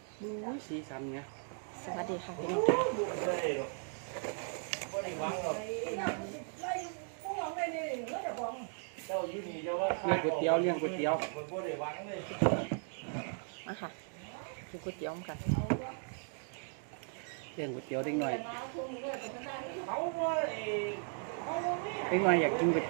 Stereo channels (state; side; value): silent; left; 53 dB below the other